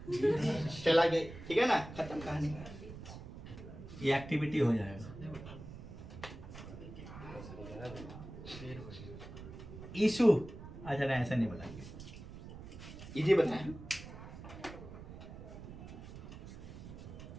चला गई। ठीक है ना? खत्म कहानी। ये एक्टिविटी हो जाएगा। इशू अच्छा नहीं, ऐसा नहीं बताएंगे, इजी बताएं।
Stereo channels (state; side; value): noise; right; rumble, 13 dB below the sound